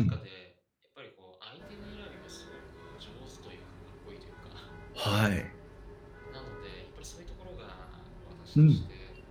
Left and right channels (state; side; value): identical; both; correlation 1.00